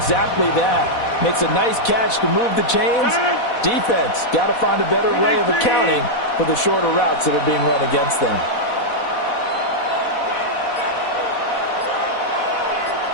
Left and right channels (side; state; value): right; late; 4.1 ms